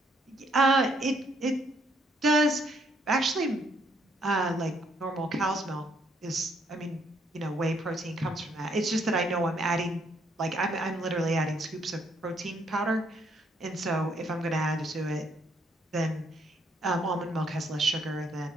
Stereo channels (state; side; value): normal; both; correlation 0.70